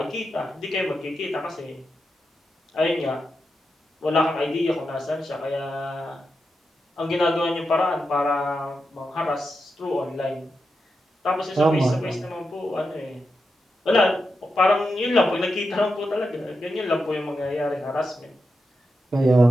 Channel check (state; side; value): normal; both; correlation 0.87